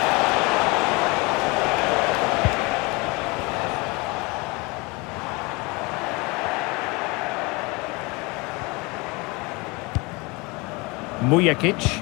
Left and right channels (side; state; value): right; quieter; 26.4 dB